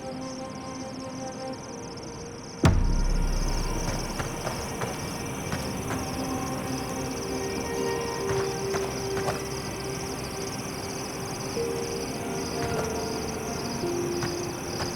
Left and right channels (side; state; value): both; identical; correlation 1.00